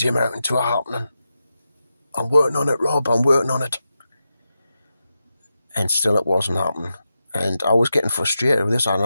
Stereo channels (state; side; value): inverted; both; correlation -0.89